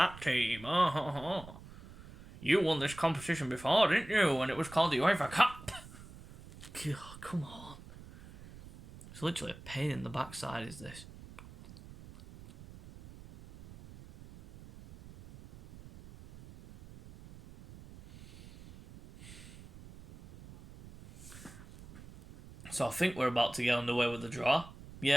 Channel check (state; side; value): noise; right; rumble, 17 dB below the sound